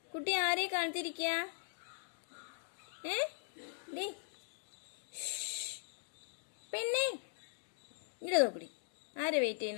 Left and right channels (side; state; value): right; silent; digital silence